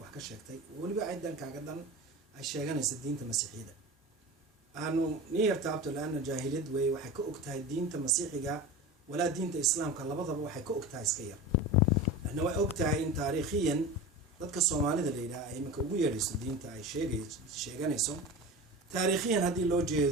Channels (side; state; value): both; normal; correlation 0.30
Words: wax ka sheegtay waliba ciidan kaaga dan ay sheeganaysa diinta masiixiyada aanu niyartaabto laana jaahiliyad way waxay ka ogtahay diinta masiixiga wala diinta islaamka labadaba waxay ka ogtahay iska yar ana way ogtahay in taariikhiyan dadka Soomaalida leeyahay ay marka ugu yeedhiso diinta ay sheeganayso taariikhiyan hadii loo